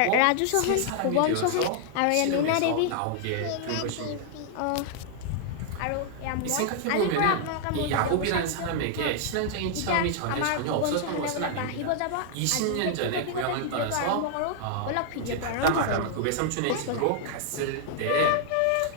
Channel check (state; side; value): different; both; correlation 0.00